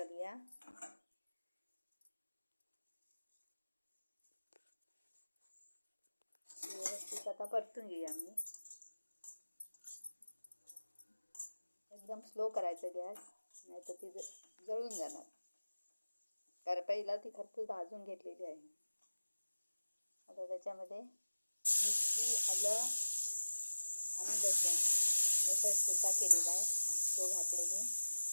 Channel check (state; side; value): inverted; both; correlation -1.00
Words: व्यवस्थित आता परतून घेऊया. आम्ही एकदम स्लो करायचं गॅस, नाही तर ती जळून जाणार, कारण पहिला ती खरपूस भाजून घेतलेली आहे. आता त्याच्यामध्ये मिरची, आलं आणि लसूण याचा ठेचा केलेला आहे, तो घातले मी.